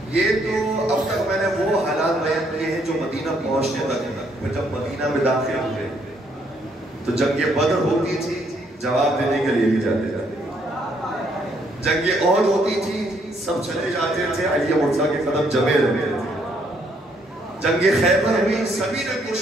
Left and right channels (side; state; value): both; normal; correlation 0.70